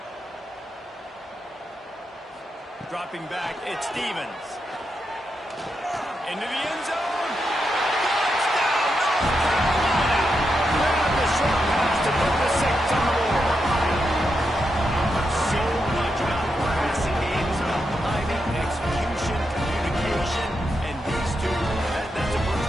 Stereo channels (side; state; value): both; normal; correlation 0.85